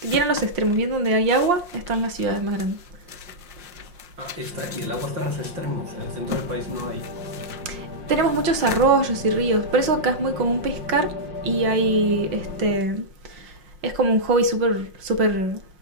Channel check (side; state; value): left; late; 5.6 ms